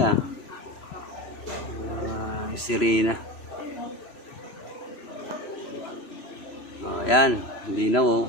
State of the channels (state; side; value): late; right; 3.0 ms